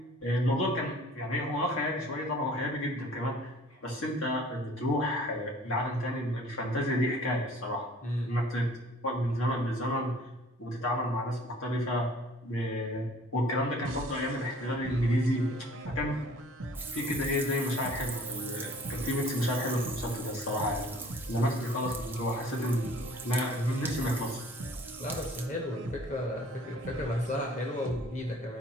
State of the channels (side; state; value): both; normal; correlation 0.51